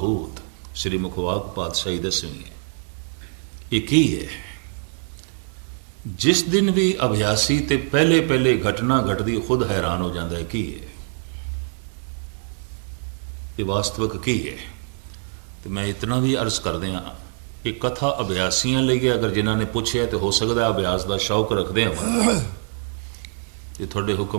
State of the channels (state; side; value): silent; left; 56 dB below the other